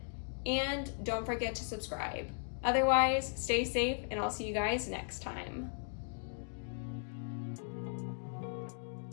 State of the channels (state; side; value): silent; right; digital silence